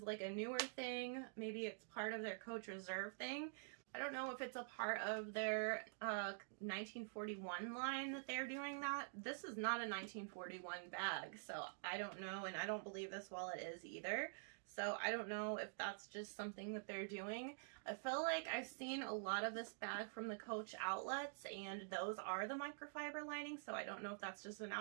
like a newer thing. Maybe it's part of their Coach Reserve thing. I don't know if it's a part of their 1941 line that they're doing that. This is not a 1941 bag, so I don't know, and I don't believe this wallet is either. So I don't know if that's just something that they're doing. I feel like I've seen a lot of this bag from the Coach outlets, and those are the microfiber lining, so I don't know if that's just an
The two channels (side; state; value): left; silent; digital silence